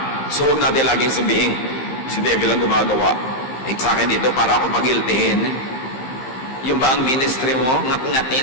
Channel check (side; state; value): right; late; 15 ms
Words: So huwag natin laging sabihin, si devil ang gumagawa. Sa akin dito para ako pag-guiltihin. Yung ba ang ministry mo,